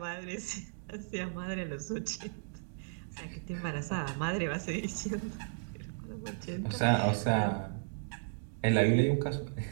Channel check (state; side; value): silent; left; digital silence